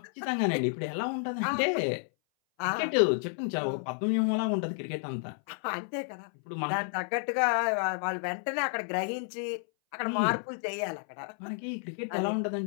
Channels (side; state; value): right; silent; 57 dB below the other